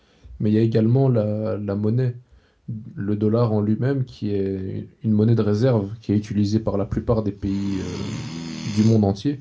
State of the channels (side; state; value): both; identical; correlation 1.00